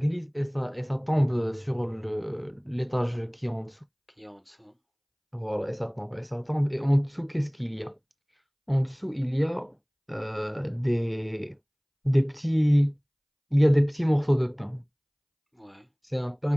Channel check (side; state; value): both; identical; correlation 1.00